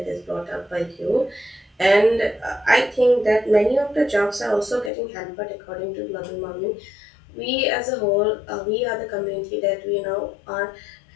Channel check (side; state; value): right; drops out; at 4.9 s